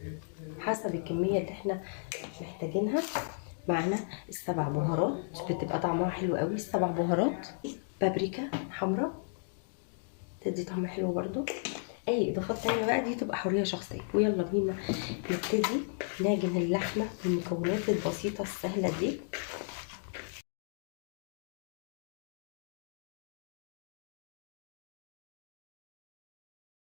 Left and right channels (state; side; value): silent; right; digital silence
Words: حسب الكميه اللي احنا محتاجينها. معانا السبع بهارات، بتبقى طعمها حلو قوي السبع بهارات. بابريكا حمراء تدي طعم حلو برضو. اي اضافات تانية بقى دي تبقى حرية شخصية. ويلا بينا نبتدي نعجن اللحمة بالمكونات البسيطة السهلة دي.